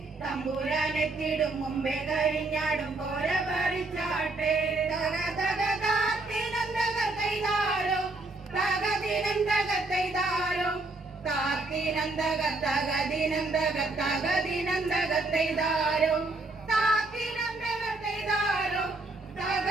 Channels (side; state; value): left; quieter; 3.1 dB